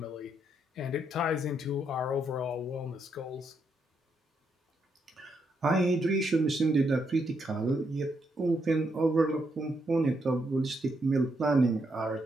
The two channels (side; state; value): both; normal; correlation 0.78